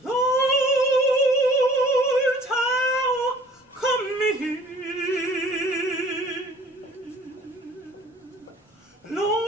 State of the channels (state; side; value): normal; both; correlation 0.51